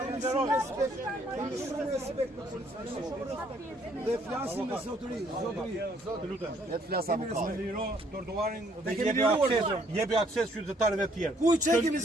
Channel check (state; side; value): normal; both; correlation 0.66